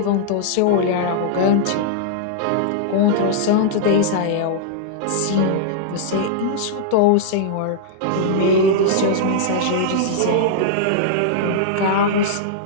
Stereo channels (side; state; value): both; different; correlation -0.01